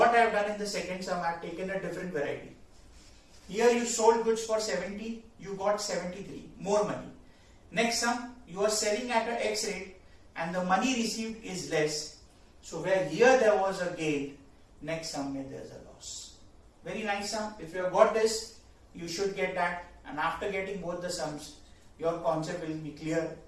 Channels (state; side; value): identical; both; correlation 1.00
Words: I have done in the second sum, I have taken a different variety. Here you sold goods for 70, you got 73, more money. Next sum, you are selling at an X rate and the money received is less. So where here there was a gain, next sum there is a loss. Very nice sum. If you have got this, you should get that, and after getting both the sums, your concept will be clear.